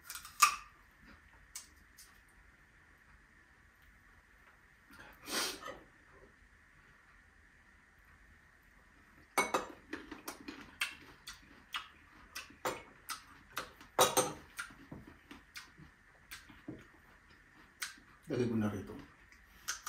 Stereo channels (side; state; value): both; identical; correlation 1.00